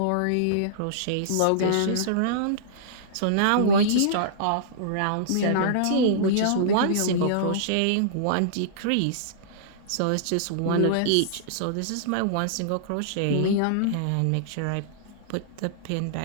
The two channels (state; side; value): different; both; correlation -0.02